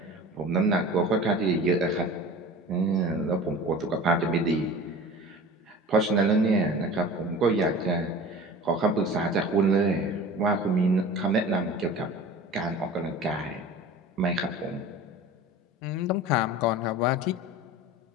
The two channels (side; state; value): both; normal; correlation 0.38